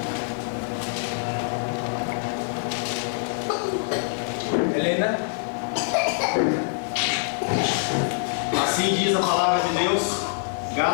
Helena. Assim diz a palavra de Deus,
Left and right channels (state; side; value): silent; right; digital silence